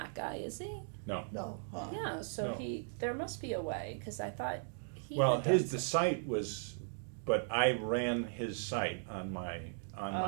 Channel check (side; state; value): left; silent; digital silence